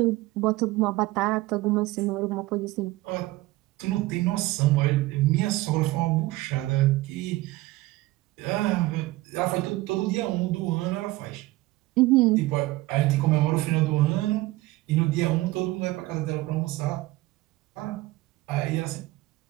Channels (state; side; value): quieter; left; 18.9 dB